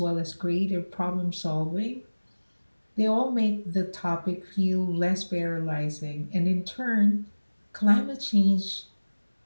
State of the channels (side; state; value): both; inverted; correlation -1.00